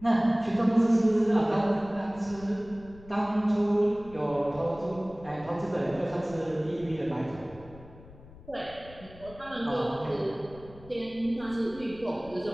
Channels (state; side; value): noise; left; rumble, 20 dB below the sound